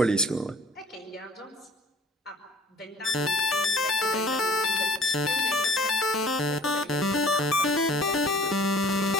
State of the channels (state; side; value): normal; both; correlation 0.51